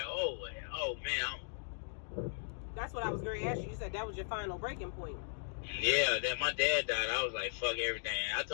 oh man. That's what I was going to ask you. You said that was your final breaking point. Yeah, that my dad died, I was like, fuck everything. I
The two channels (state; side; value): silent; right; digital silence